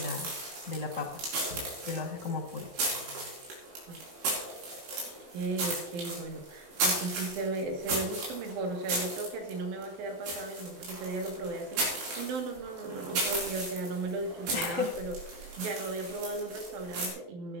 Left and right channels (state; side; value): late; left; 12 ms